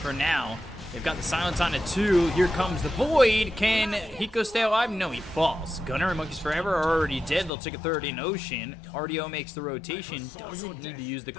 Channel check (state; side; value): drops out; right; at 7.5 s